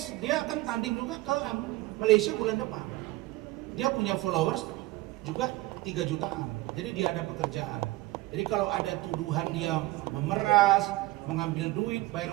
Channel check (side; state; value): left; quieter; 18.7 dB